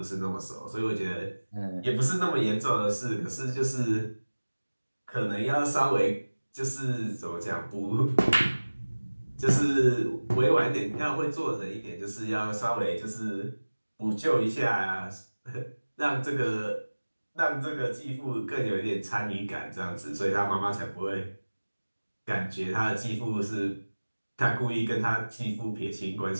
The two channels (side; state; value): both; inverted; correlation -1.00